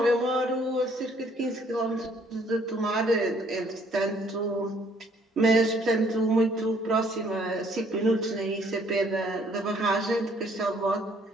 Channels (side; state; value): both; normal; correlation 0.63